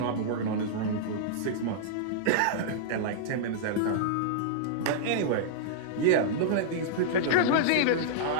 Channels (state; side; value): different; both; correlation -0.02